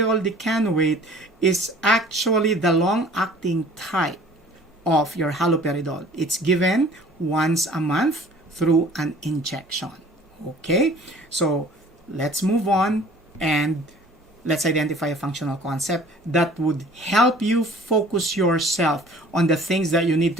decanoate is actually the long-acting type of your haloperidol. It's given once a month through an injection. Okay. So let's move on and let's identify a functional concept that would help you focus yourself on the things that you need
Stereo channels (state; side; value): normal; both; correlation 0.50